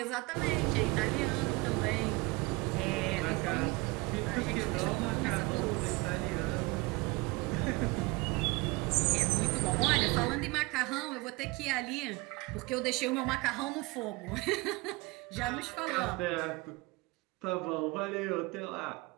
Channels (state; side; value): quieter; left; 24.5 dB